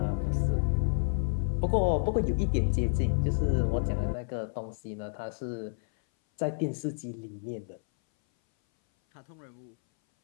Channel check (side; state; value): right; silent; 58 dB below the other